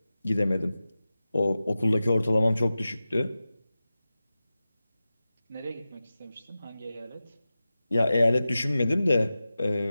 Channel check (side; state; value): both; inverted; correlation -0.95